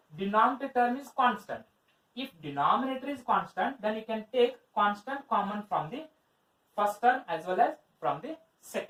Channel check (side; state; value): both; identical; correlation 1.00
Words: denominator term is constant. If denominator is constant, then you can take constant common from the first term as well as from the